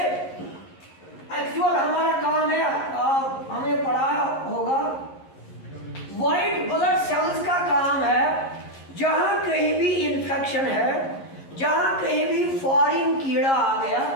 एक्चुअल हमारा काम है, हमने पढ़ा होगा, व्हाइट ब्लड सेल्स का काम है जहाँ कहीं भी इन्फेक्शन है, जहाँ कहीं भी फॉरेन कीड़ा आ गया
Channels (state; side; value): late; right; 11 ms